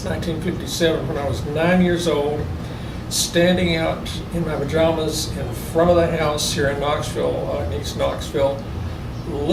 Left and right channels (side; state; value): both; identical; correlation 1.00